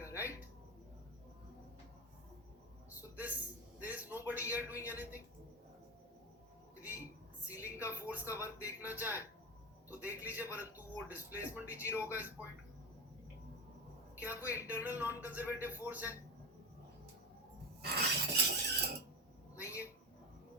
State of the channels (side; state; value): both; normal; correlation 0.18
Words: right? So this there is nobody here doing anything. यदि सीलिंग का फोर्स का वर्क देखना चाहे तो देख लीजिए, परंतु वो डिस्प्लेसमेंट ही जीरो होगा इस पॉइंट का। क्या कोई इंटरनल नॉन कंजर्वेटिव फोर्स है? नहीं है।